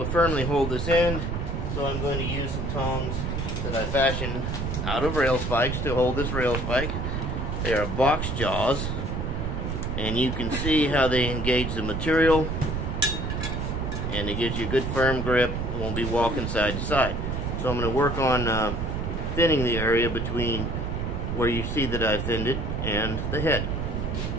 firmly hold this end. So I'm going to use some tongs that I fashioned out of rail spikes to hold this rail spike. They are box jaws, and you can see how they engage the material, and it gives you a good firm grip. It won't be walking side to side. So I'm going to work on thinning the area between where you see that I thinned it and the head.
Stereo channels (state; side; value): noise; right; rumble, 2 dB below the sound